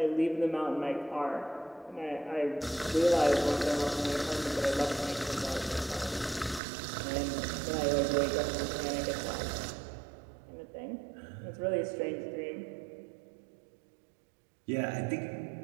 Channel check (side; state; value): left; drops out; at 6.6 s